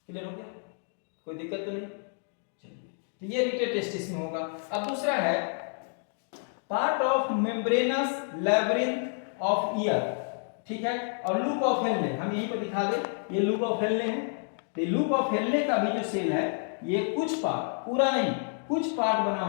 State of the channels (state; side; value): silent; right; 58 dB below the other